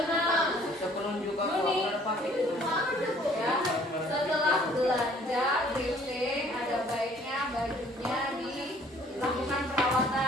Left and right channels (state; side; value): normal; both; correlation 0.58